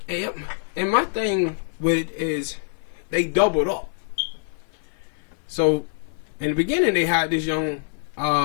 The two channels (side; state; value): right; silent; 60 dB below the other